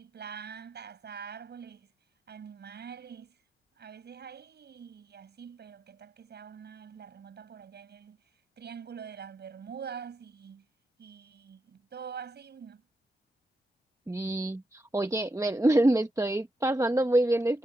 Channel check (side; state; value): both; normal; correlation 0.85